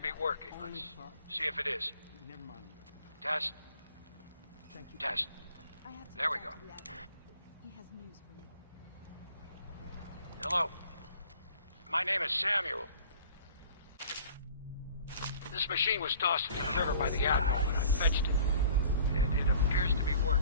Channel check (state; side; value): inverted; both; correlation -0.49